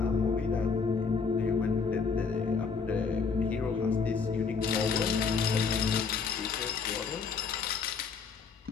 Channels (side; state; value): right; quieter; 5.3 dB